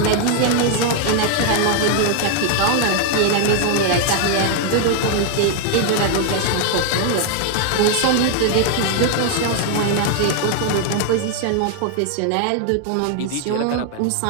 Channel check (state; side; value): different; both; correlation 0.00